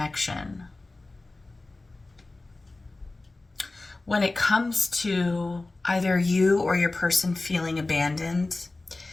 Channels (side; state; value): right; quieter; 3.1 dB